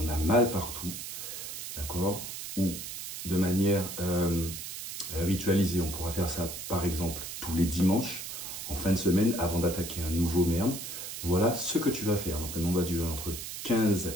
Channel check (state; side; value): noise; right; hiss, 8 dB below the sound